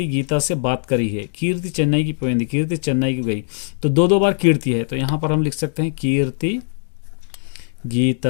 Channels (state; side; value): silent; right; digital silence